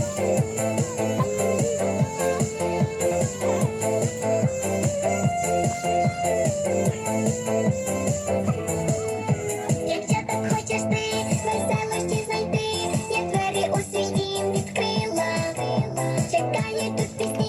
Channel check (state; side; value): identical; both; correlation 1.00